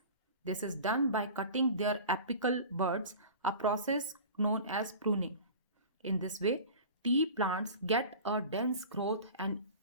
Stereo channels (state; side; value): inverted; both; correlation -0.38